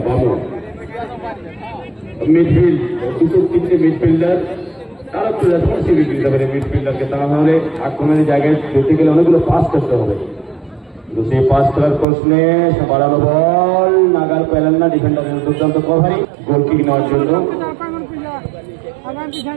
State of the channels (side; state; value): left; drops out; at 12.1 s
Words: বামু মিডফিল্ড দুটো তিনটে মিডফিল্ডার তারা একটু রেসপন্সিবিলিটি দিতে পারে মিডফিল্ডারকে, তাহলে আক্রমণের জায়গায় যেতে গেলে অনেকগুলো পাস করতে হবে, কিন্তু সেই পাস করার প্রশ্নে বাড়ানো বল নাগাল পেলেন না, ডিফেন্ডারের দুর্দান্ত কভারিং গোল কিক নেওয়ার জন্য